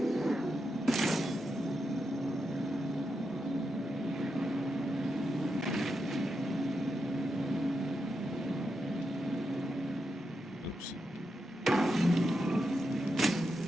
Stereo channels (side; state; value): both; normal; correlation 0.86